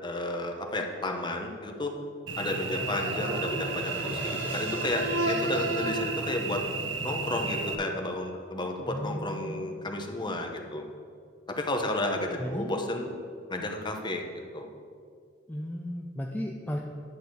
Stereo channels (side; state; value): both; normal; correlation 0.24